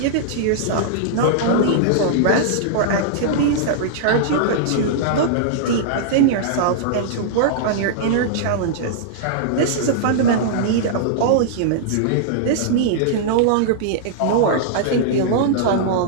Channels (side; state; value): both; different; correlation -0.02